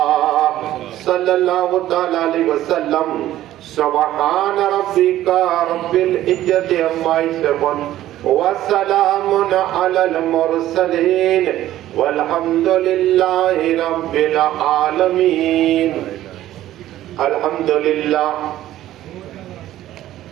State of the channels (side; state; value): left; quieter; 13.7 dB